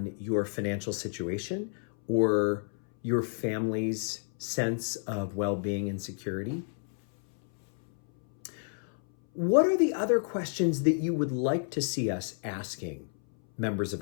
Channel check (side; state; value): right; silent; 58 dB below the other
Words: your financial situation or your family's sense of well-being and security? What are the other questions that you would like to see us asking members of